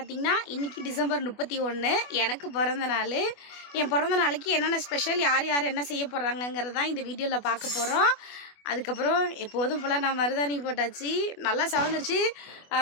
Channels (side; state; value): right; late; 24 ms